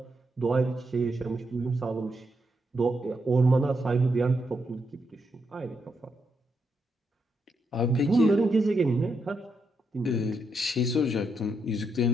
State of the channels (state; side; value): normal; both; correlation 0.80